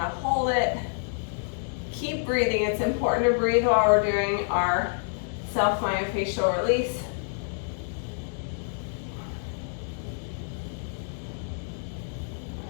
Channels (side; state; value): right; silent; digital silence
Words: hold it Keep breathing. It's important to breathe while we're doing our self-myofascial release.